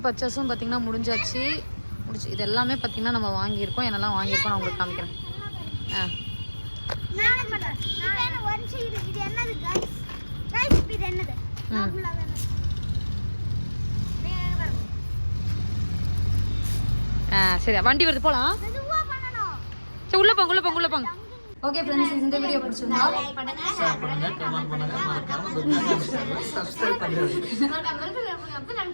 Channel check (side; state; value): both; inverted; correlation -1.00